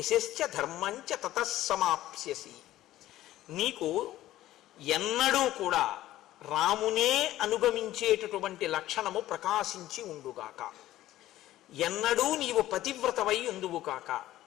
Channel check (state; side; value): quieter; right; 14.6 dB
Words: ధర్మంచ తతస్సమాప్స్యసి. నీకు ఎన్నడూ కూడా రామునే అనుగమించేటటువంటి లక్షణము ప్రకాశించి ఉండుగాక. ఎన్నడూ నీవు పతివ్రతవై ఉందువు కాక.